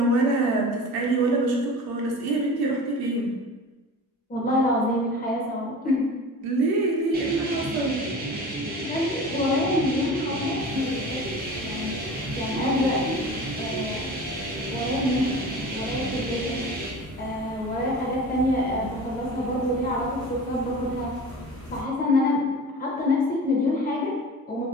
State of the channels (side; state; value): both; normal; correlation 0.37